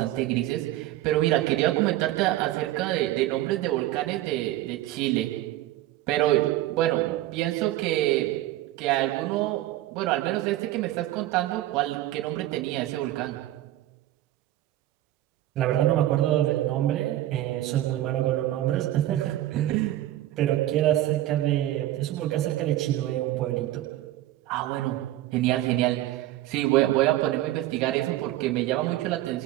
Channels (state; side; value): quieter; left; 14.8 dB